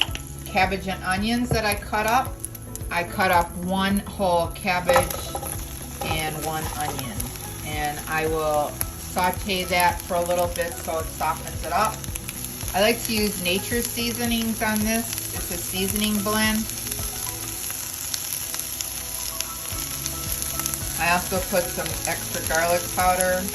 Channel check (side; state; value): both; identical; correlation 1.00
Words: cabbage and onions that I cut up. I cut up 1 whole cabbage and 1 onion. And I will saute that for a little bit so it softens it up. I like to use nature seasonings on this. It's a seasoning blend. I also put some extra garlic powder